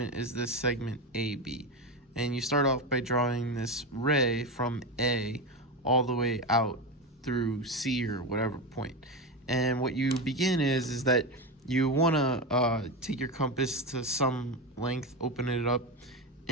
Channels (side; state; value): both; normal; correlation 0.16